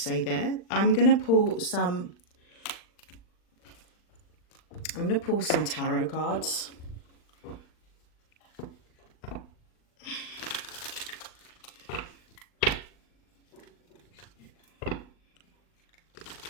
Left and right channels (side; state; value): right; late; 40 ms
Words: there. I'm going to pull some tarot cards.